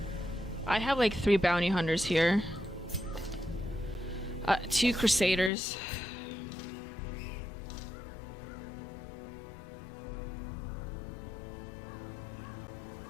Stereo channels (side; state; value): right; drops out; at 5.5 s